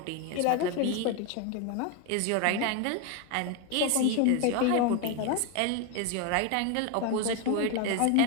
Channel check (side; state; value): both; different; correlation 0.01